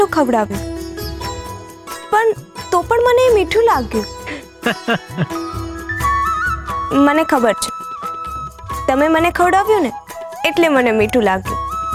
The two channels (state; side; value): identical; both; correlation 1.00